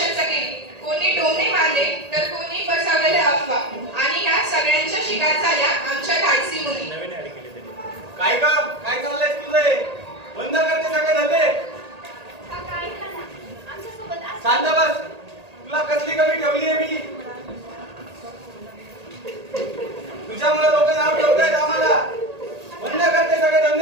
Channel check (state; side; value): late; left; 1.8 ms